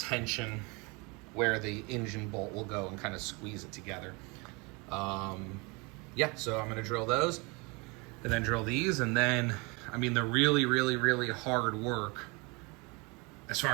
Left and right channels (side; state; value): left; quieter; 28.5 dB